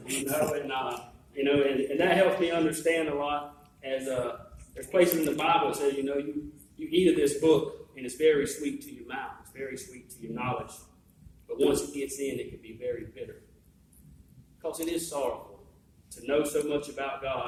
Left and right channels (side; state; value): both; identical; correlation 1.00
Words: And that helps me understand a lot. As there's places in the Bible that says, you eat of this book, and it's very sweet to your mouth. It's very sweet to your knowledge. But once it gets in, it can be very bitter. Because it is sorrowful to know so much about